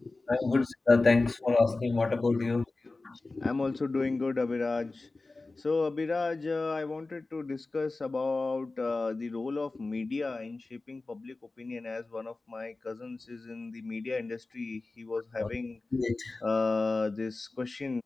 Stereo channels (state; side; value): quieter; right; 3.4 dB